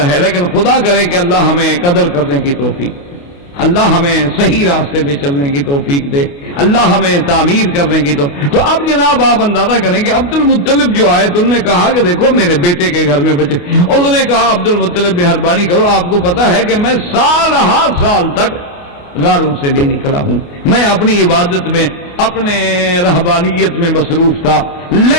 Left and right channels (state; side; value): late; right; 28 ms